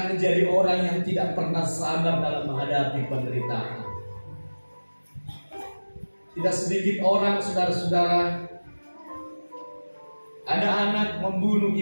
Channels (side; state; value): both; inverted; correlation -1.00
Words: menjadi orang yang tidak pernah sabar dalam menghadapi penderitaan. Tidak sedikit orang, saudara-saudara, ada anak membunuh